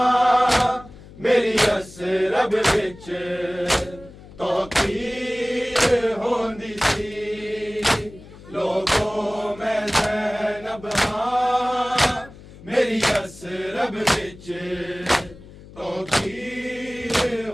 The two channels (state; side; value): noise; left; hum, 19 dB below the sound